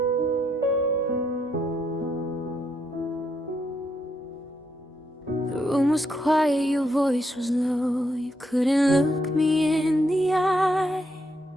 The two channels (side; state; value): both; normal; correlation 0.77